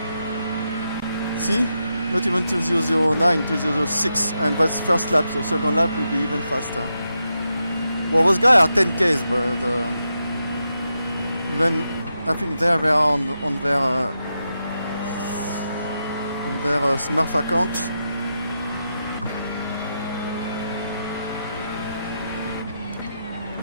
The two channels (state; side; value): inverted; both; correlation -0.86